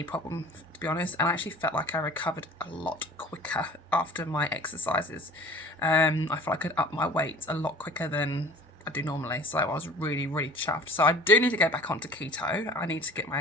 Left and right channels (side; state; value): both; normal; correlation 0.45